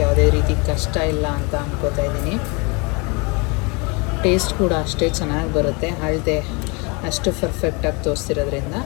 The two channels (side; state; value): right; quieter; 29.8 dB